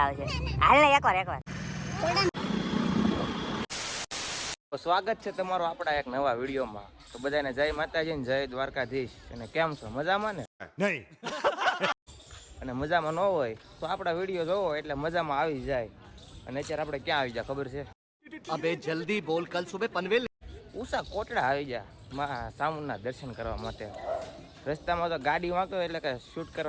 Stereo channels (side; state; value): both; identical; correlation 1.00